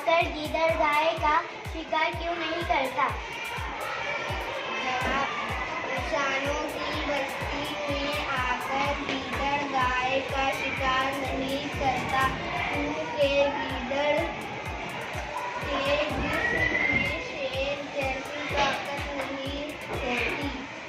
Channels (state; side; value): identical; both; correlation 1.00